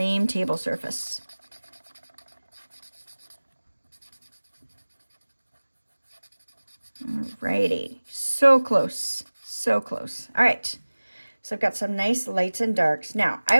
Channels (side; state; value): both; inverted; correlation -1.00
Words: table surface. Alrighty, so close, So close. All right. So I've got some nice lights and darks. Now,